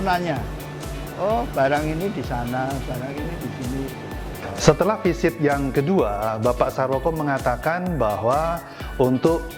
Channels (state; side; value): identical; both; correlation 1.00